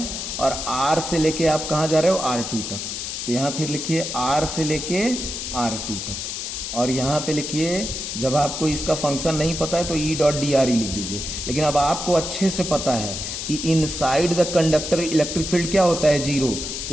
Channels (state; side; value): noise; left; hiss, 5 dB below the sound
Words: और R से लेके आप कहां जा रहे हो, R2 तक। तो यहां फिर लिखिए R से लेके R2 तक, और यहां पे लिखिए, जब आपको इसका फंक्शन नहीं पता है तो E डॉट dr ही लिख दीजिए। लेकिन अब आपको अच्छे से पता है कि inside the conductor electric field क्या होता है, 0।